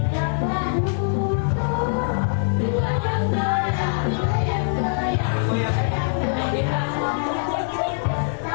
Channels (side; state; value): right; silent; 64 dB below the other